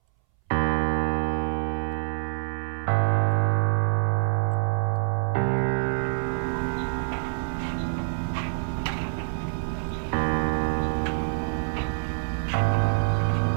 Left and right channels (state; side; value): silent; left; 60 dB below the other